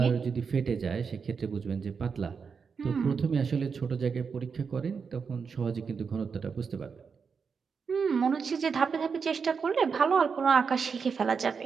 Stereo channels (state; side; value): quieter; left; 5.8 dB